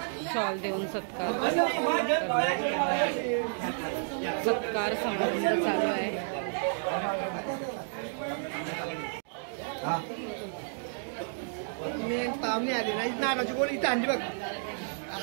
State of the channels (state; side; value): silent; left; digital silence